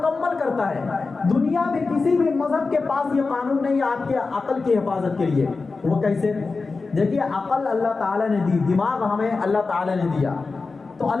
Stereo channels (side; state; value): right; quieter; 4.1 dB